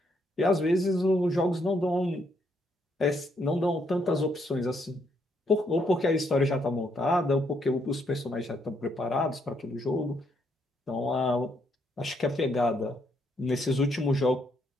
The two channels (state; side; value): normal; both; correlation 0.74